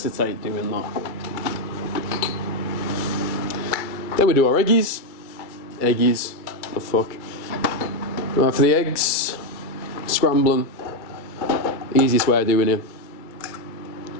doing that. Then we do our eggies. Eggies, the fuck. Right, for the eggs, scramble them. Easiest way of doing it.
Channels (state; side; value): late; right; 2.3 ms